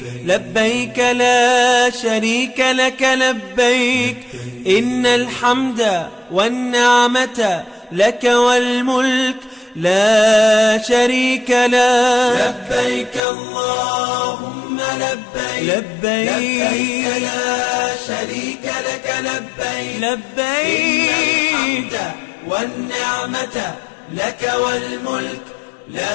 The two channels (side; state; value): right; drops out; at 13.2 s